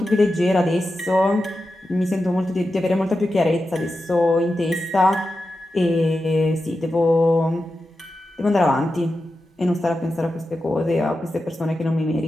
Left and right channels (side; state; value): both; normal; correlation 0.91